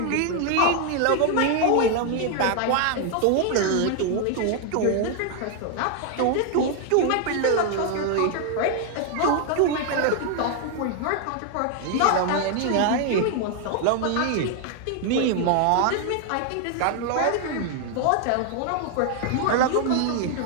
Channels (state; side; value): different; both; correlation 0.00